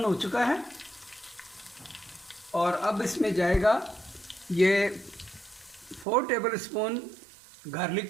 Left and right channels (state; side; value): drops out; left; at 6.1 s